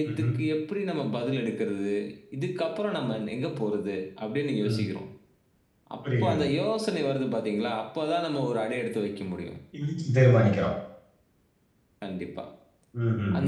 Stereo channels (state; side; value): identical; both; correlation 1.00